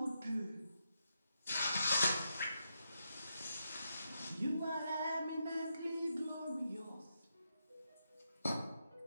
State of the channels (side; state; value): both; inverted; correlation -0.84